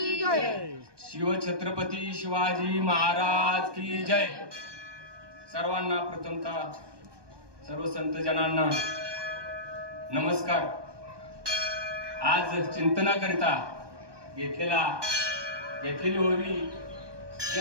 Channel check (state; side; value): late; left; 1.2 ms